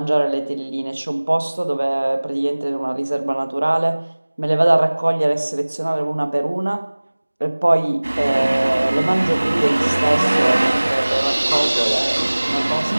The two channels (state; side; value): inverted; both; correlation -1.00